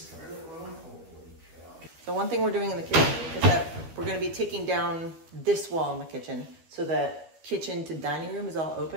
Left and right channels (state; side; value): late; left; 12 ms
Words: toilet room? Holy cow. The one thing we're doing in the kitchen is that we're going to be taking down this wall in the kitchen so that kitchen to dining room is all